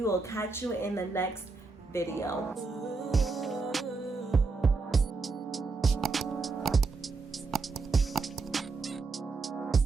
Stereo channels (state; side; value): quieter; left; 4.1 dB